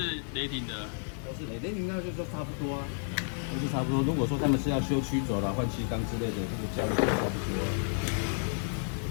雷霆的。都是雷霆，那就说差不多啊，都是差不多。如果说他们是要修曲轴啦、换气缸之类的，这个价位就差不多。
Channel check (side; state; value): right; silent; 57 dB below the other